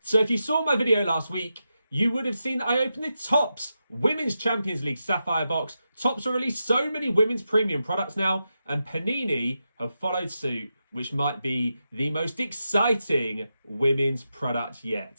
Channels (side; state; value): both; inverted; correlation -0.88